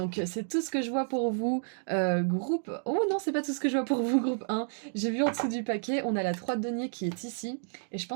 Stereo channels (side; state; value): left; silent; digital silence